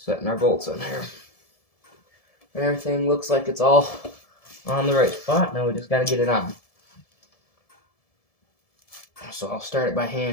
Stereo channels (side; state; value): right; late; 1.7 ms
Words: setting our bolts in here. And everything looks like it's all on the right spot. Now we just got to get it on. So I'll start it by